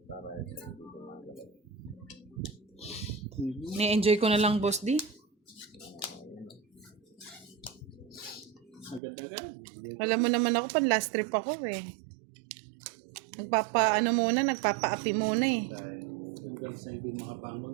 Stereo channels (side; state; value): left; drops out; at 9.0 s